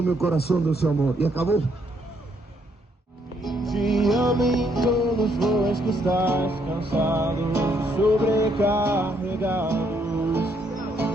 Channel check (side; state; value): both; normal; correlation 0.72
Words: meu coração do seu amor. E acabou. Te amo em todos os voos que estás cansados, sobrecarregados,